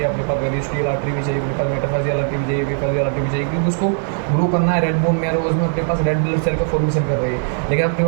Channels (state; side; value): silent; left; 66 dB below the other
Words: अपने पास पेरिस्टियल आर्टरी भी चाहिए, अपने पास मेटाफाइजियल आर्टरी भी चाहिए, एपीफाइजियल आर्टरी भी चाहिए, क्योंकि उसको ग्रो करना है। रेड बोन में उसमें अपने पास रेड ब्लड सेल का फॉर्मेशन कर रही है, लेकिन अपने